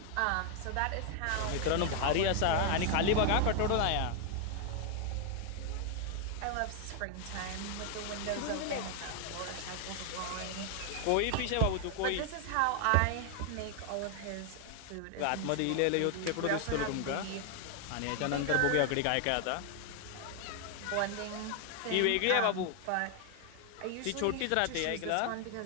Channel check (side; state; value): both; different; correlation 0.00